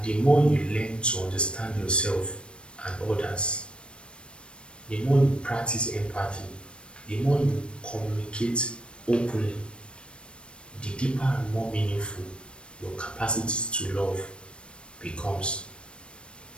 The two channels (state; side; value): late; right; 0.057 ms